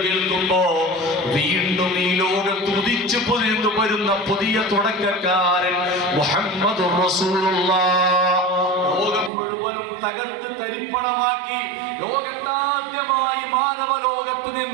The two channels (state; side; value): drops out; left; at 9.3 s